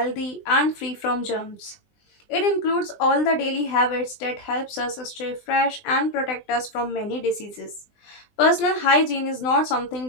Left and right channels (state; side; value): late; right; 20 ms